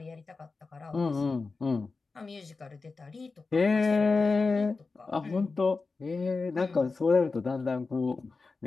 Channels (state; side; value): quieter; right; 4.1 dB